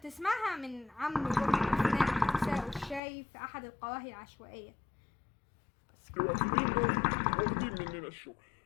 من عم جمعة اثناء تساؤل الشاي في احد القواهي العشوائية. الوافدين دول واخدين مننا الشغل.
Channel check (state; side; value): drops out; right; at 3.0 s